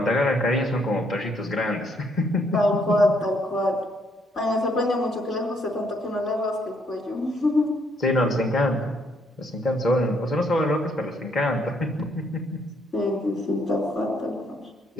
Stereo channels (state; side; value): normal; both; correlation 0.70